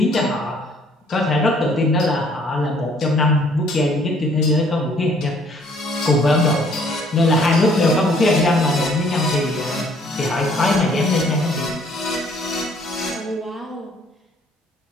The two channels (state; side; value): normal; both; correlation 0.61